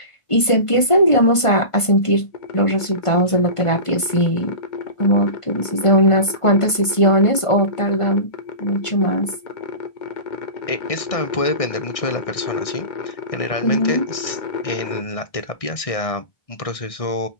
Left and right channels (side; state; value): right; late; 1.5 ms